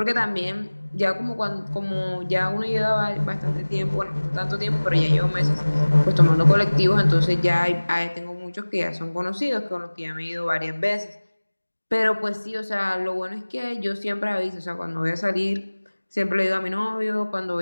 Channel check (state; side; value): inverted; both; correlation -1.00